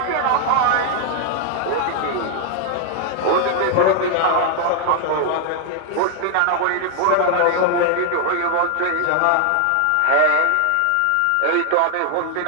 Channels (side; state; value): both; different; correlation 0.00